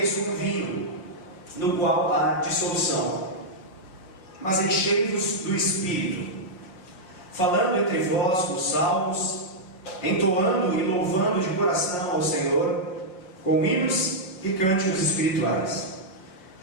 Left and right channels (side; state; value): right; late; 5.6 ms